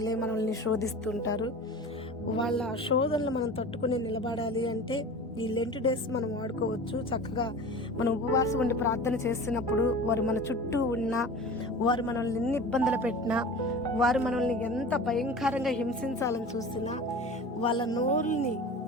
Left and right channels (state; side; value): normal; both; correlation 0.36